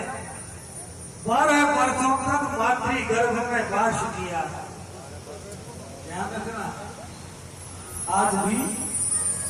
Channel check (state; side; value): identical; both; correlation 1.00